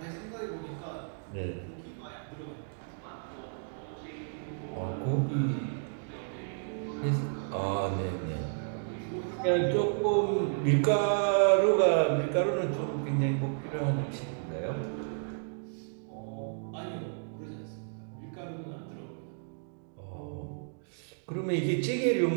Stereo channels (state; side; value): silent; left; digital silence